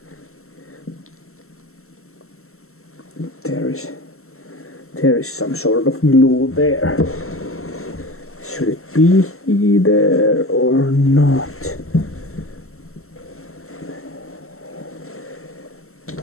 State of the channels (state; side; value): late; right; 0.63 ms